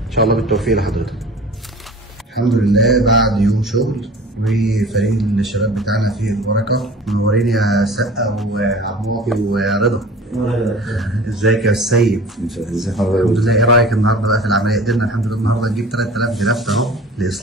إن شاء الله بالتوفيق لحضرتك. الحمد لله بعد يوم شغل، وفريق الشباب بتاعنا فيه البركة. منورين يا سقا وعماطي ورضا. ازيك يا سيد؟ ازي حضرتك؟ الحمد لله. ايه رايك النهارده بقى في العمليه؟ قدرنا الحمد لله النهارده نجيب 3000 جرافت اهو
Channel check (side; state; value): both; normal; correlation 0.41